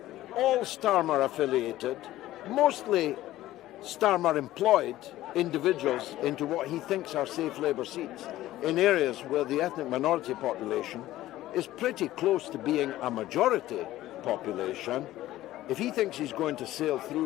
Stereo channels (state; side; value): quieter; right; 15.1 dB